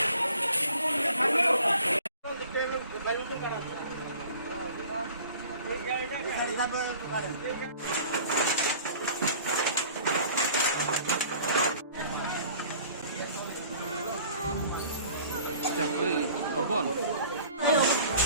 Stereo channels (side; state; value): both; inverted; correlation -0.48